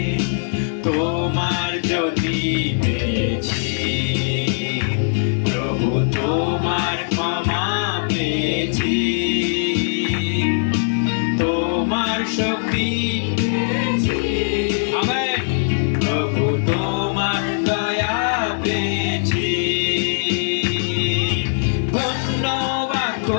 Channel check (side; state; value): right; silent; digital silence